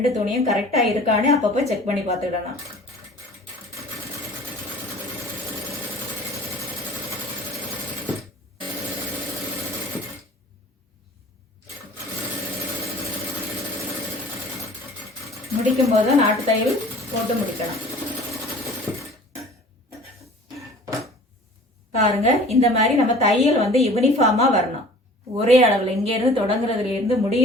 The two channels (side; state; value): both; normal; correlation 0.47